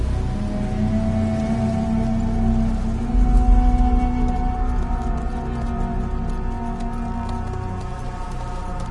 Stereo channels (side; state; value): both; identical; correlation 1.00